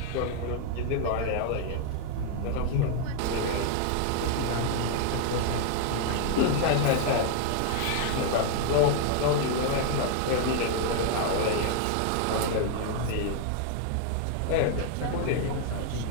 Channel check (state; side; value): different; both; correlation 0.00